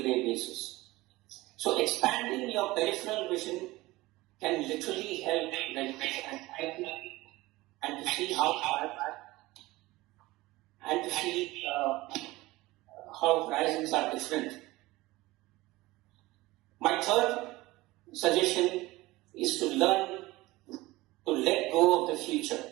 basis. So expanding your peripheral vision can literally help reduce anxiety and to see how horizons are different. My third suggestion is to learn to let go of the future.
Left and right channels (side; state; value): left; quieter; 19.6 dB